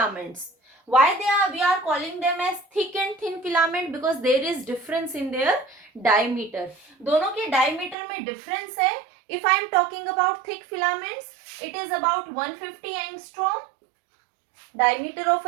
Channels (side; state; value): left; drops out; at 8.0 s